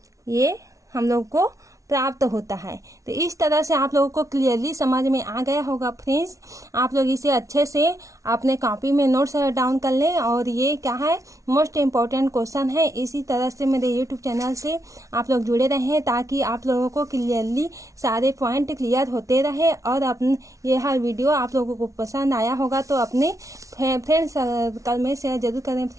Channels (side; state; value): left; late; 0.16 ms